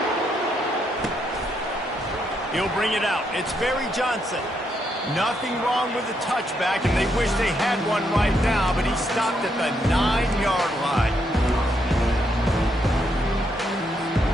He'll bring it out. It's Barry Johnson. Nothing wrong with the touchback, and they wish they had one right now, but he stopped at the 9-yard line.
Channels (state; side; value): normal; both; correlation 0.77